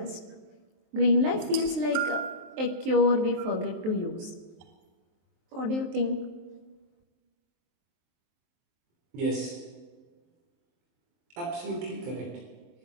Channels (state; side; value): late; left; 23 ms